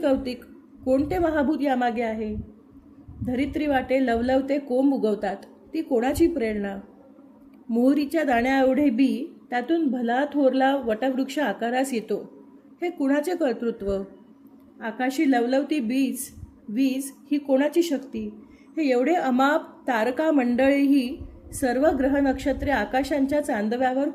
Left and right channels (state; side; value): identical; both; correlation 1.00